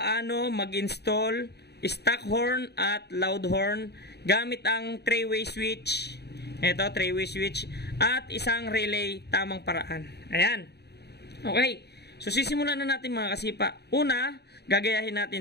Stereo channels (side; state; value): right; late; 0.48 ms